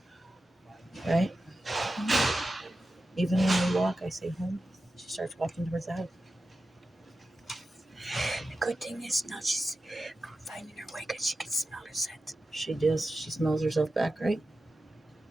Right? Even when we walk, I say home. She starts walking towards the house. The good thing is now she's finding her way because she can smell her scent. She does. She smells herself back, right?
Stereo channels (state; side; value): normal; both; correlation 0.92